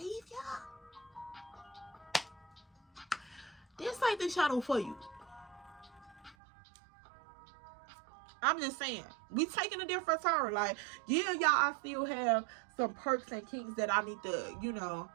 this ain't the channel for you. I'm just saying, we taking a different turn. Like, yeah, y'all, I still have some perks and kinks that I need to, you know,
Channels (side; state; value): left; drops out; at 6.4 s